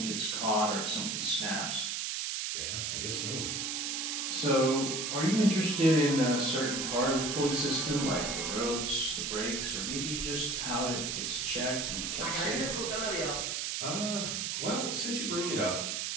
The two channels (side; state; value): right; noise; hiss, 1 dB below the sound